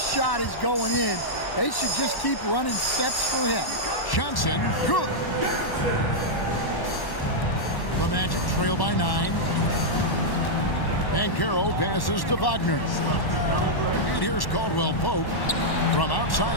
is going in. They should just keep running sets for him. Johnson, good. The Magic trail by 9. Banchero passes to Wagner. And here's Caldwell Pope from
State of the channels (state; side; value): late; right; 1.1 ms